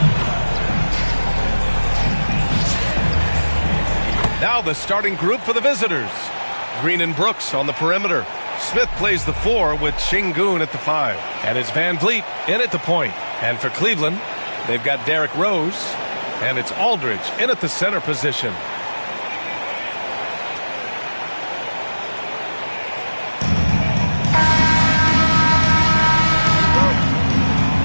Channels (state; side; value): inverted; both; correlation -1.00